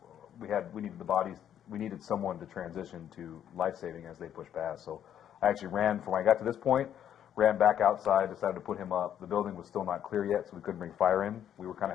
we needed the bodies. We needed someone to transition to life-saving as they pushed past. So I actually ran from when I got to this point, ran back outside, decided to put him up. The building was still not clear yet, so we couldn't bring fire in. We were kind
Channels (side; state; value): right; quieter; 9.9 dB